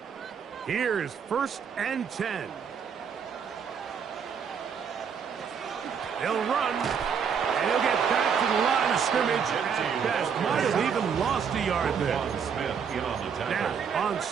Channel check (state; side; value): quieter; left; 6.9 dB